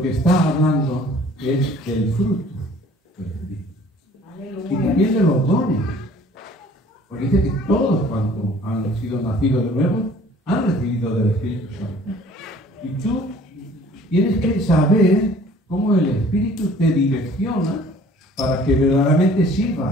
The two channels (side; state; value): both; normal; correlation 0.53